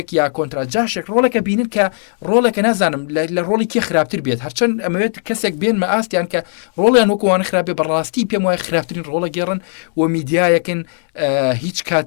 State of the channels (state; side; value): silent; right; digital silence